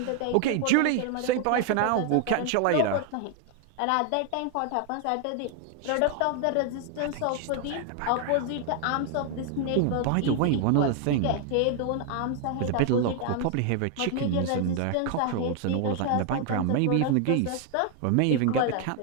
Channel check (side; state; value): both; different; correlation 0.00